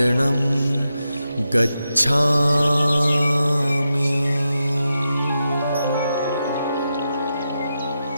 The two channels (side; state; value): both; inverted; correlation -0.87